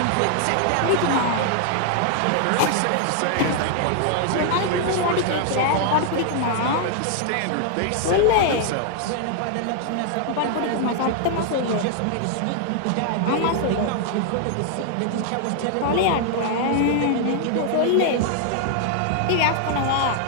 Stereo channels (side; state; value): both; different; correlation 0.00